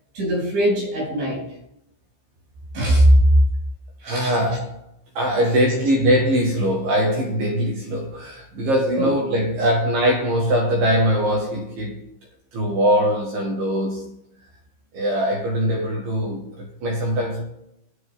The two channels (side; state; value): left; late; 15 ms